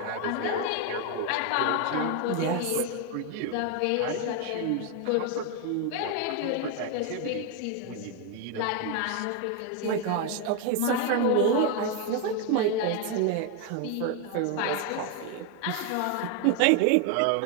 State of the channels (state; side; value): different; both; correlation 0.01